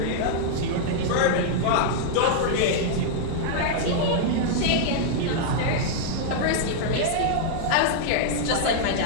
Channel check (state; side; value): different; both; correlation -0.01